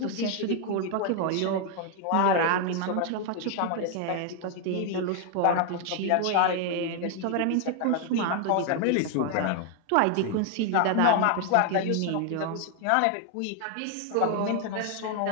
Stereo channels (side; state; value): both; different; correlation 0.00